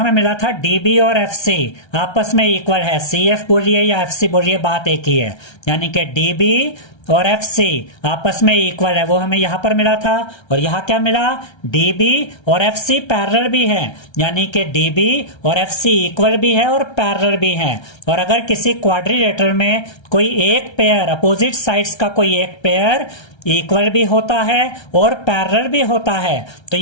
मिला था DB और FC आपस में इक्वल है, CF बोलिए या FC बोलिए बात एक ही है, यानी कि DB और FC आपस में इक्वल है, वो हमें यहां पर मिला था। और यहां क्या मिला, DB और FC पैरेलल भी है, यानी कि DB और FC इक्वल भी है और पैरेलल भी है। और अगर किसी क्वाड्रिलेटरल में कोई एक पेयर, अपोजिट साइड्स का कोई एक पेयर इक्वल भी होता है और पैरेलल भी होता है, तो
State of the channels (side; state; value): right; late; 1.3 ms